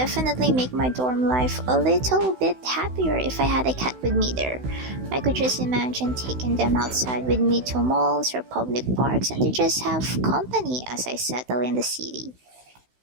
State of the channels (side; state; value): left; late; 16 ms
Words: make my dorm life a little bit happier if I had a cat with me there. I could just imagine taking them outside with me to malls or public parks and to just have company as I settle in the city.